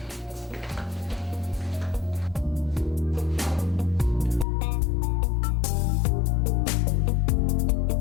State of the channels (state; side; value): drops out; right; at 4.5 s